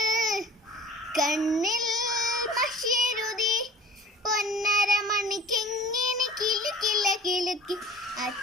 കണ്ണിൽ മഷിയെഴുതി പൊന്നര മണിക്കെങ്ങനെ കിലുക്കില്ല കിലുക്കി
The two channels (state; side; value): normal; both; correlation 0.44